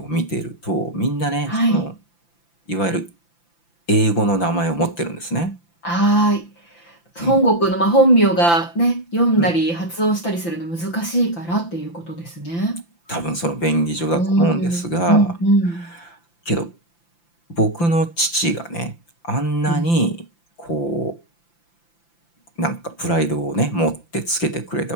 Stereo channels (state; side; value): late; right; 5.9 ms